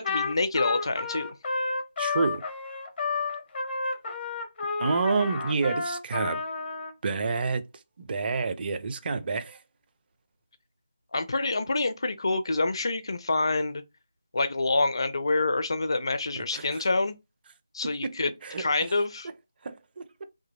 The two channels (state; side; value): inverted; both; correlation -0.80